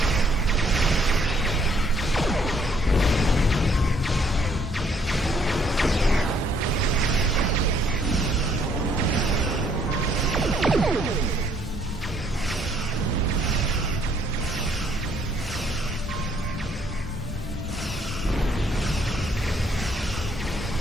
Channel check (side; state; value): both; normal; correlation 0.66